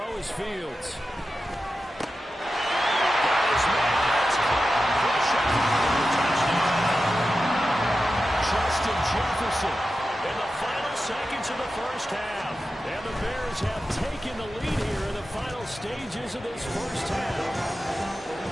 is Fields. Justin Jefferson in the final seconds of the first half. And the Bears have taken the lead here in the final stages of this first half.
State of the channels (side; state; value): both; normal; correlation 0.92